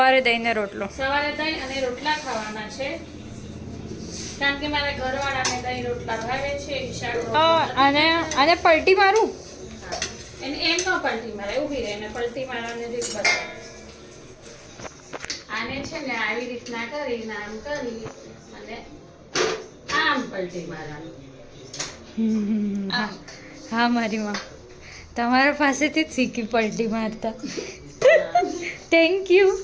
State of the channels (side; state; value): both; identical; correlation 1.00